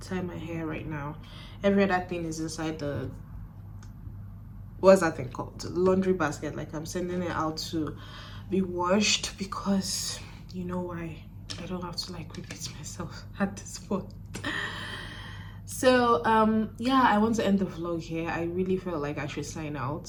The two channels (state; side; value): identical; both; correlation 1.00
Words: my hair right now. Every other thing is inside the, what's that thing called, the laundry basket. Like, I'm sending it out to be washed because you know why. I don't have to like repeat myself at this point. So yeah, I want to end the vlog here. I really feel like I should sign